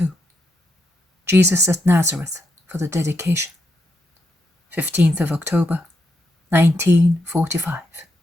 Jesus at Nazareth for the dedication. 15th of October, 1945.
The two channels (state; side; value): normal; both; correlation 0.81